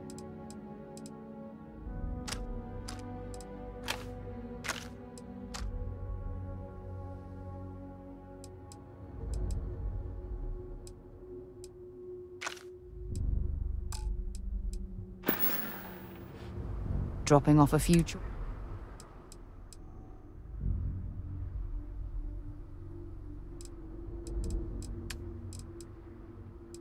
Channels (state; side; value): identical; both; correlation 1.00